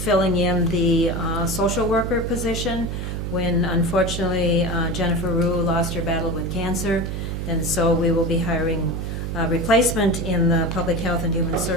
in the social worker position when unfortunately Jennifer Rue lost her battle with cancer. And so we will be hiring a replacement in the Public Health and Human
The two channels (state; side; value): noise; right; hum, 4 dB below the sound